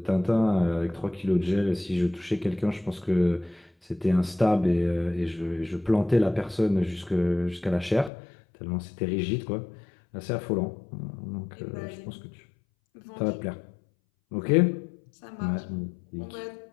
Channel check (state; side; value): drops out; right; at 8.1 s